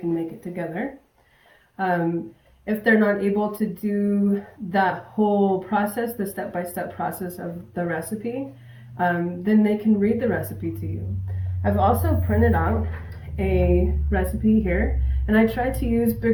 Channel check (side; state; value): both; identical; correlation 1.00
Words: make it together. If they're not able to do that whole process, the step-by-step process of the recipe, then they can read the recipe to you. I've also printed out a recipe here, and I tried to use